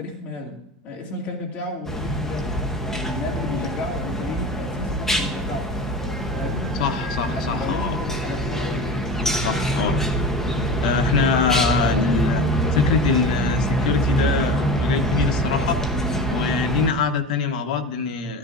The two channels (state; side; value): normal; both; correlation 0.30